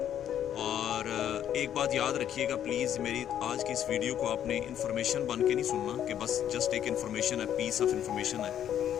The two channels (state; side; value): quieter; right; 10.2 dB